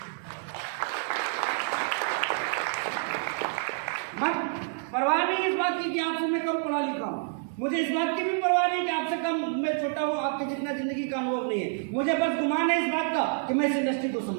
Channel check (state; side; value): silent; left; 59 dB below the other